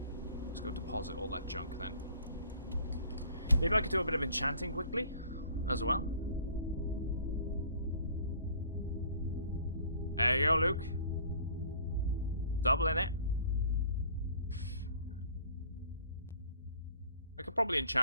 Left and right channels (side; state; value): both; inverted; correlation -0.52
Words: Let's go deposit all that junk then. Maybe I could do a bit of enchanting quickly as well. There you go, Luke. Doubling it. I could probably